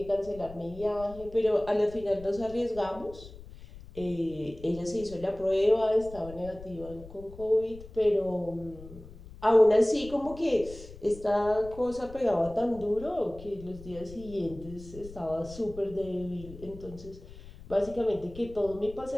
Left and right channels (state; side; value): noise; left; rumble, 17 dB below the sound